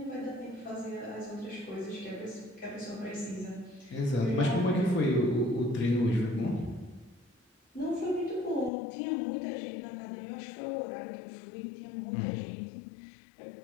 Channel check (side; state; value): right; drops out; at 8.7 s